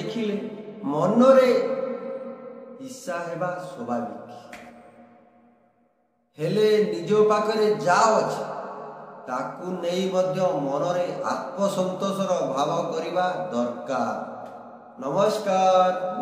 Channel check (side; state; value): both; identical; correlation 1.00